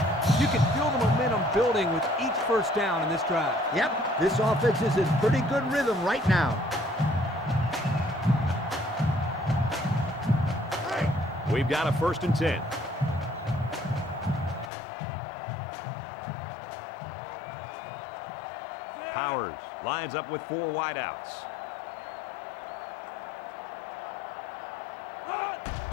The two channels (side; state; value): right; drops out; at 14.7 s